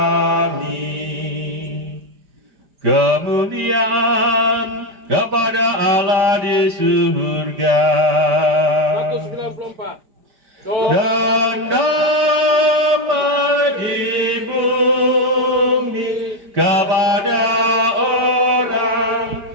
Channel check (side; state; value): left; late; 4.9 ms